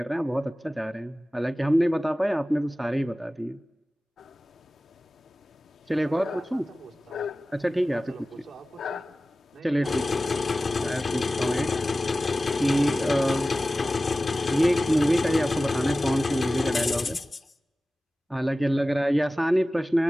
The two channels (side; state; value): both; normal; correlation 0.96